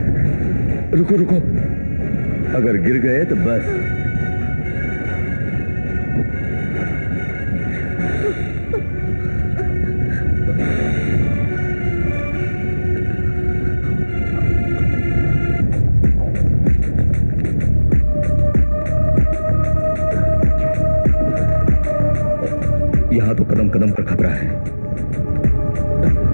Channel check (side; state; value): both; inverted; correlation -1.00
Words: रुको रुको, अगर गिर गए तो बस। यहां तो कदम कदम पर खतरा है।